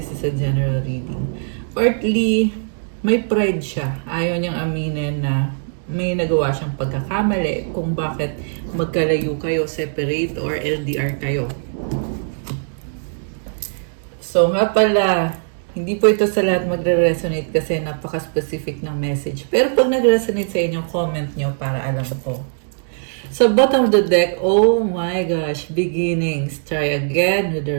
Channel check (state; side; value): silent; left; 66 dB below the other